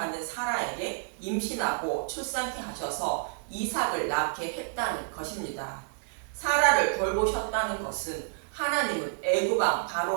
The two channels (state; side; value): silent; left; digital silence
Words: 사라에게 임신하고 출산케 하셔서 이삭을 낳게 했다는 것입니다. 사라를 돌보셨다는 것은 하나님은 애굽왕